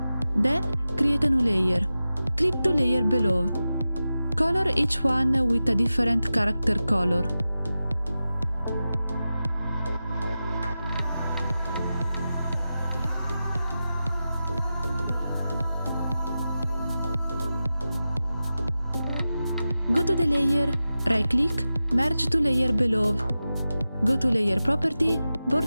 Then create a new layer. Click to layer below. Color each one with a different character color. Go to the layer, right-click, merge to layer below. Go to Layer Property,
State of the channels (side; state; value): both; inverted; correlation -0.93